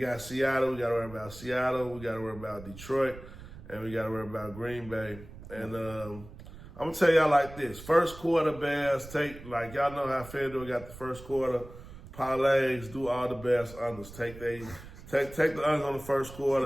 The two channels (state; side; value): noise; right; rumble, 16 dB below the sound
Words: Seattle. We got to worry about Seattle. We got to worry about Detroit, and we got to worry about Green Bay. And I'm going to tell y'all like this. First quarter Bears, like y'all know how FanDuel got the first quarter parlays, do all the Bears unders. Take the unders on the first